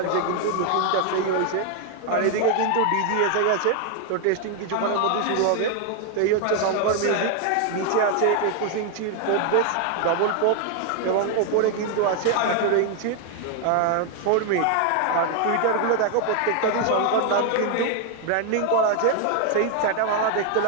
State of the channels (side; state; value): both; different; correlation 0.00